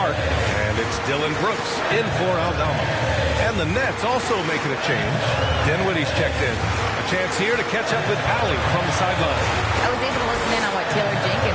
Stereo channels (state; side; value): identical; both; correlation 1.00